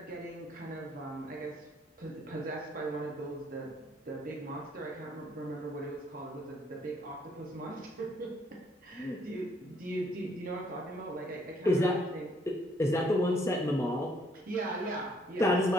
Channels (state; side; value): normal; both; correlation 0.66